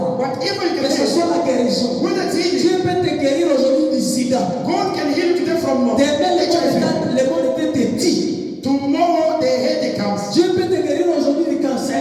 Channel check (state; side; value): identical; both; correlation 1.00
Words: whatever you que can ce say, soit la guérison. whether it's healing, Dieu peut te guérir aujourd'hui du sida. God can heal you today from Demain, HIV. le monde était petit. Tomorrow the headache comes. Dieu peut te guérir aujourd'hui du